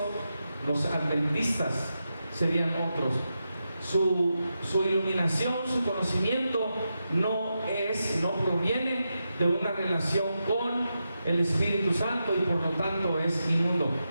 los adventistas serían otros. Su iluminación, su conocimiento no proviene de una relación con el Espíritu Santo y por lo tanto es inmundo.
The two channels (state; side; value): inverted; both; correlation -0.88